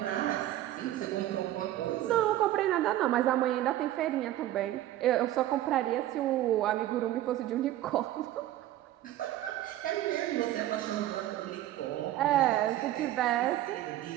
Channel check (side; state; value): left; quieter; 14.0 dB